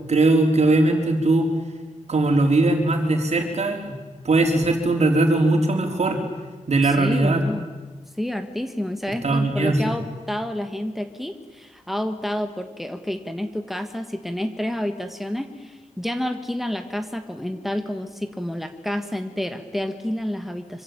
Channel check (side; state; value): both; normal; correlation 0.79